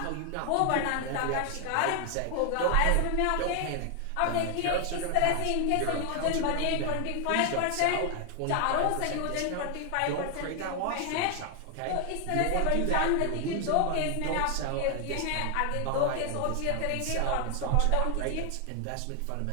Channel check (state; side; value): different; both; correlation 0.00